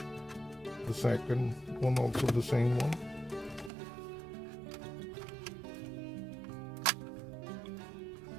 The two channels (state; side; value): drops out; left; at 3.7 s